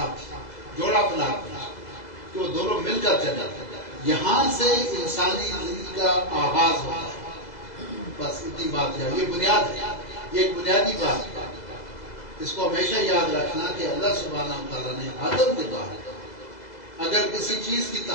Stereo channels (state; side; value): late; right; 2.0 ms